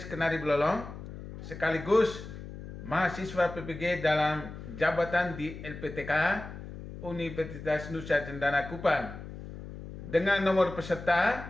Kenari Belolong, sekaligus mahasiswa PPG dalam jabatan di LPTK Universitas Nusa Cendana Kupang. Dengan nomor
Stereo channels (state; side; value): noise; left; hum, 12 dB below the sound